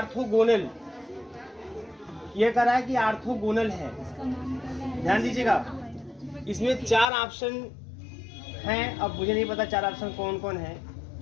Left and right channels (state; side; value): drops out; right; at 7.1 s